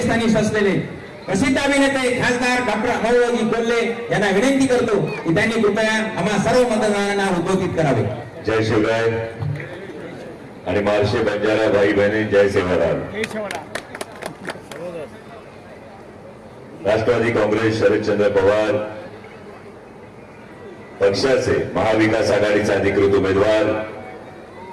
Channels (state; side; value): identical; both; correlation 1.00